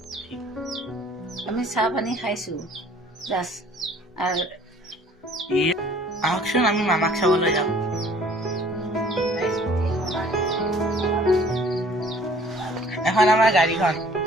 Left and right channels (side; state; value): both; normal; correlation 0.54